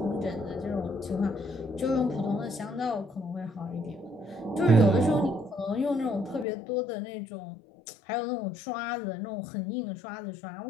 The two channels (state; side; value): drops out; right; at 6.5 s